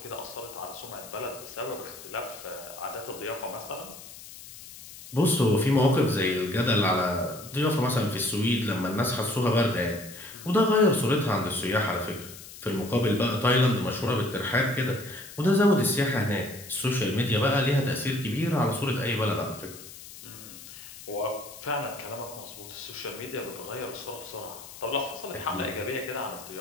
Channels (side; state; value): left; noise; hiss, 16 dB below the sound